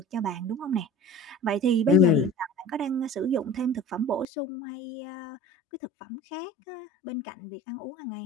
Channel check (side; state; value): right; drops out; at 4.2 s